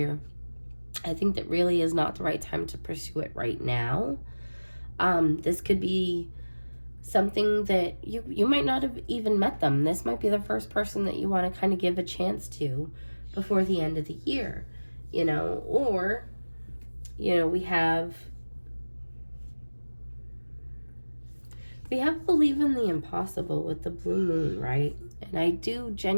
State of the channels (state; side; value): inverted; both; correlation -1.00